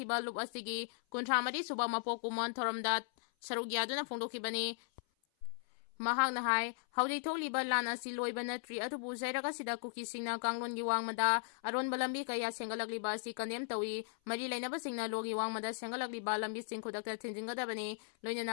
lup asigi kuntramadi suba mapok kumon thoramda saruk yaduna phongdokibani. Mahakna hai hawjik thokliba lan asi loiba natri atubu zairaga sida Kuki singna kanglongi wangmada aronba lambi kaya senggalakliba asi kandem tawi mari lainaba singna logi wangmada senggalakliba lambi sing khudakta thinjingadabani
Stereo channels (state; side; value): silent; right; 53 dB below the other